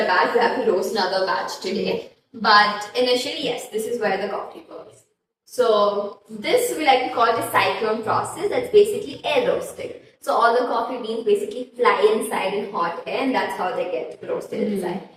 batch. We have to roast another batch today. But initially, yes, this is where the coffee goes. So this we like to call the cyclone process. That's basically air roasting. So all the coffee beans basically fly inside in hot air, and that's how they get roasted inside.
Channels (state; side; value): identical; both; correlation 1.00